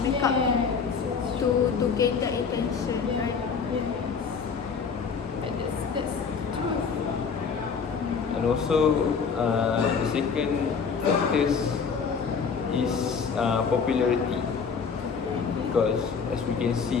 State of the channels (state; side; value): quieter; right; 5.8 dB